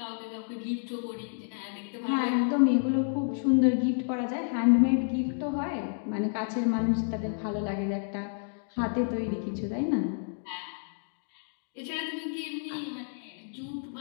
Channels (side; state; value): right; silent; digital silence